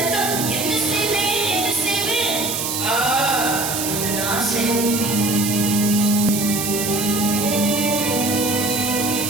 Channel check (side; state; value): right; noise; hiss, 2 dB below the sound